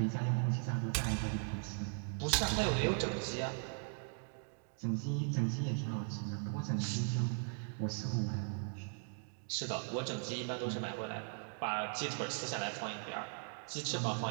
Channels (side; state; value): left; silent; 52 dB below the other